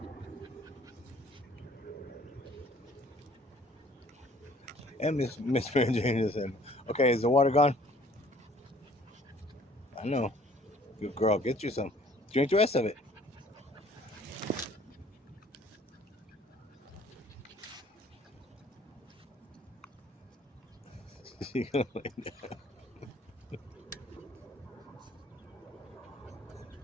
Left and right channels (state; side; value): normal; both; correlation 0.56